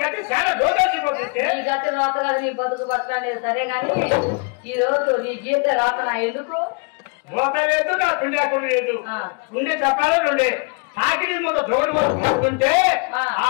చాలా రోజుపోతుంది నీ గతి రాత కదా నీ బతుకు బతకలేదు సరే గాని ఈ రోజు నీ గీత రాతనా ఎందుకు మోత లేదు నా పిండాకుడు లేదు ఉండే చెప్పాలి నుండే సాగిరి మూత జోడు మూత పడుతుంటే ఆ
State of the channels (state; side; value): quieter; right; 34.0 dB